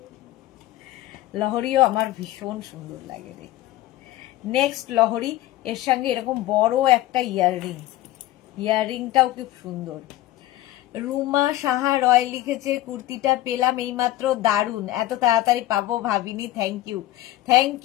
লহরিও আমার ভীষণ সুন্দর লাগে দেখতে। নেক্সট লহরি, এর সঙ্গে এরকম বড় একটা ইয়াররিং, ইয়াররিংটাও খুব সুন্দর। রুমা সাহা রয় লিখেছে কুর্তিটা পেলাম এইমাত্র, দারুন, এত তাড়াতাড়ি পাবো ভাবিনি। Thank you, thank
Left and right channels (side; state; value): right; quieter; 15.3 dB